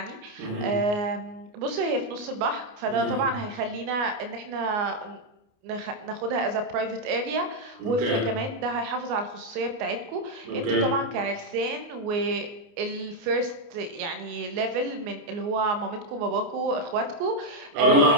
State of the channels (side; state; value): left; late; 29 ms